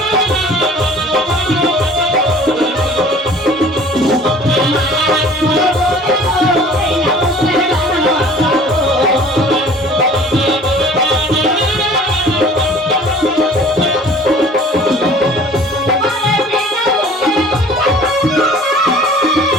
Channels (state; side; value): normal; both; correlation 0.48